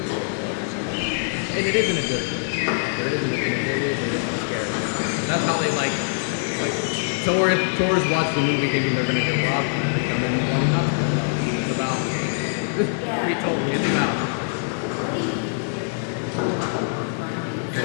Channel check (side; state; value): right; silent; digital silence